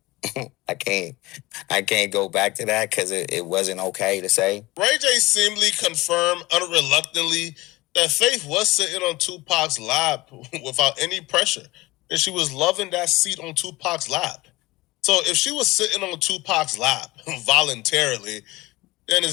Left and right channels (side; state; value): right; quieter; 20.5 dB